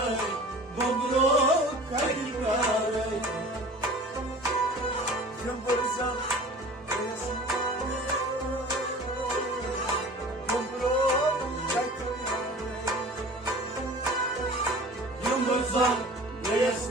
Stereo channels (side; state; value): both; normal; correlation 0.42